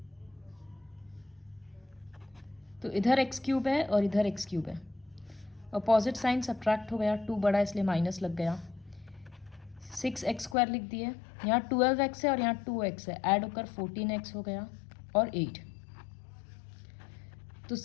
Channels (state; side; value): drops out; right; at 10.6 s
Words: तो इधर एक्स क्यूब है और इधर एक्स क्यूब है, अपोजिट साइन सब्ट्रैक्ट हो गया, 2 बड़ा इसलिए माइनस लग गया। 6x² लिख दिए, यहाँ 12x है और यहाँ 2x है, ऐड होकर 14x हो गया और 8। तो